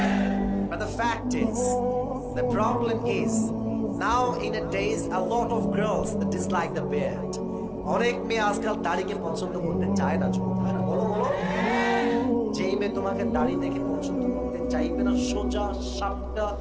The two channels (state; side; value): identical; both; correlation 1.00